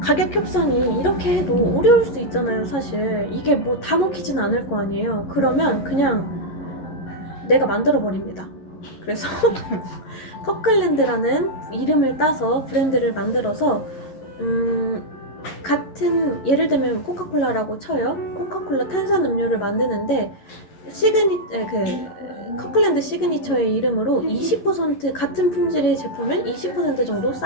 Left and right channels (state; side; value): late; right; 11 ms